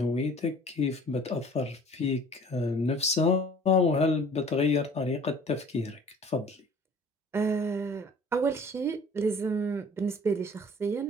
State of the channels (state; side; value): normal; both; correlation 0.49